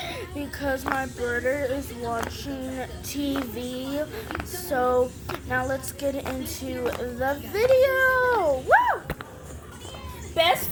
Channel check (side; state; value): both; identical; correlation 1.00